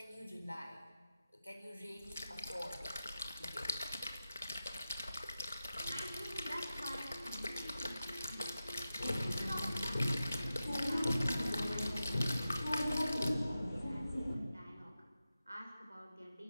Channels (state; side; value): inverted; both; correlation -0.92